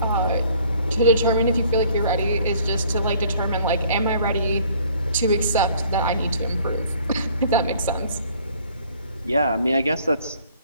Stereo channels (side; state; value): both; inverted; correlation -0.57